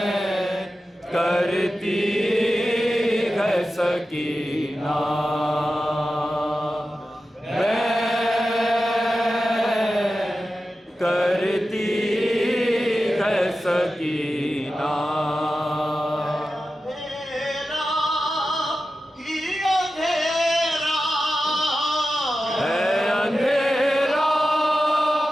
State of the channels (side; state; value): both; normal; correlation 0.93